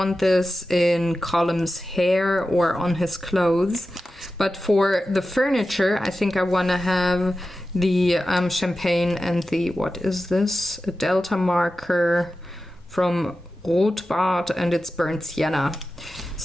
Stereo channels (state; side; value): normal; both; correlation 0.93